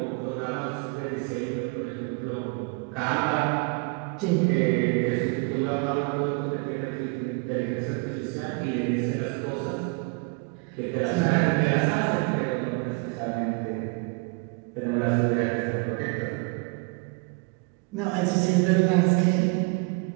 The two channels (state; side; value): quieter; left; 31.4 dB